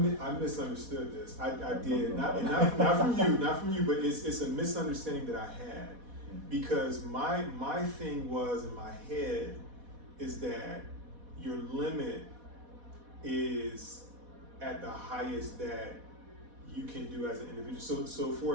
misunderstood this. I did not from you, but it's a misunderstanding that I had, because my thing was in my head is that your limit is at the highest that you can do as an individual. So for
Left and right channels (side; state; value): left; late; 4.1 ms